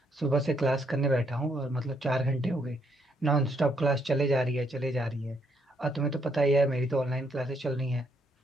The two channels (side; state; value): both; normal; correlation 0.73